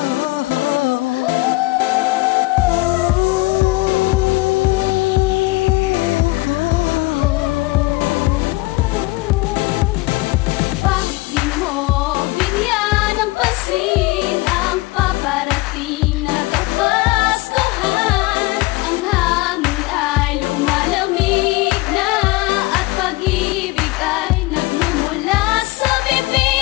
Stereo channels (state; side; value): quieter; right; 21.8 dB